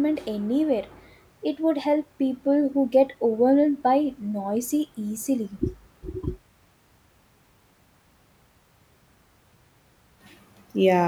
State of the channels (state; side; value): identical; both; correlation 1.00